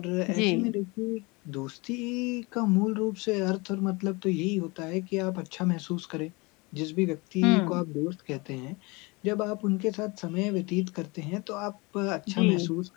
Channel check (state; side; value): quieter; right; 26.2 dB